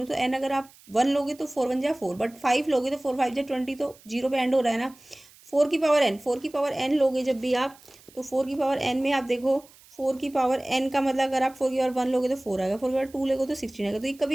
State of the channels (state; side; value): noise; right; hiss, 25 dB below the sound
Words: तो n अगर आप 1 लोगे तो 4 1 जा 4, बट 5 लोगे तो 4 5 जा 20, तो 0 पे एंड हो रहा है ना। 4 की पावर n, 4 की पावर n लोगे जब भी आप, तो 4 की पावर n में आप देखो 4 की पावर n का मतलब अगर आप 4 की पावर 1 लोगे तो 4 आएगा, 4 की पावर 2 लोगे तो 16 आएगा, तो ये